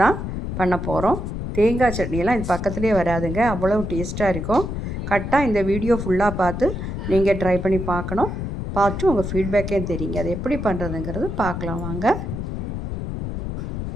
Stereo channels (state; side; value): noise; left; rumble, 4 dB below the sound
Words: பண்ண போகிறோம். தேங்காய் சட்னியெல்லாம் இது பக்கத்துலேயே வராதுங்க, அவ்வளோ டேஸ்ட்டாக இருக்கும். கரெக்டாக இந்த வீடியோ ஃபுல்லாக பார்த்து நீங்கள் ட்ரை பண்ணி பார்க்கணும். பார்த்து உங்கள் ஃபீட்பேக்கே தெரியுங்க அது எப்படி பண்ணுறதுங்கிறது பார்க்கலாம் வாங்க.